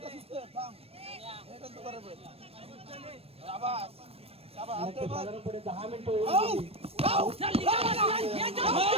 साधारणपणे 10 मिनिटं चल निघाला.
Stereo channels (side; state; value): left; late; 0.28 ms